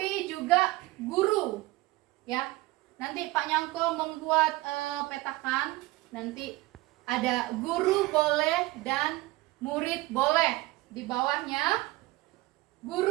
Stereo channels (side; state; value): left; quieter; 19.8 dB